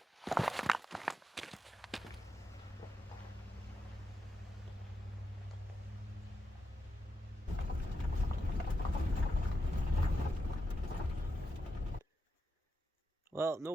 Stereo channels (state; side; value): normal; both; correlation 0.86